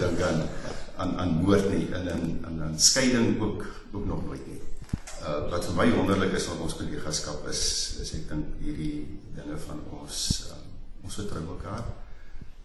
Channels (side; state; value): both; identical; correlation 1.00